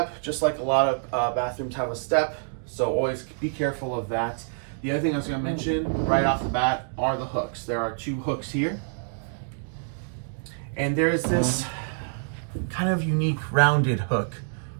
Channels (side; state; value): left; silent; digital silence